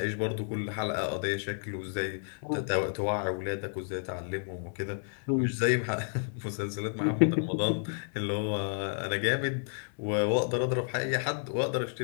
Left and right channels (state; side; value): silent; right; digital silence